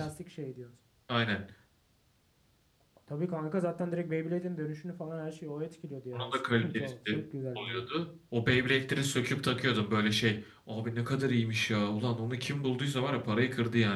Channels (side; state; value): both; identical; correlation 1.00